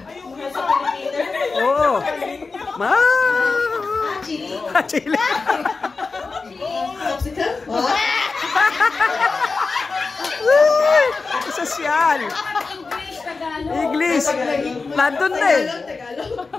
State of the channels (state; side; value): quieter; right; 4.2 dB